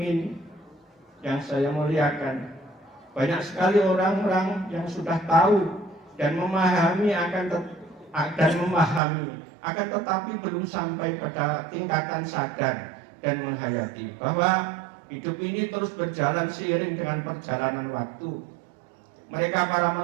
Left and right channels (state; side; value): drops out; left; at 9.0 s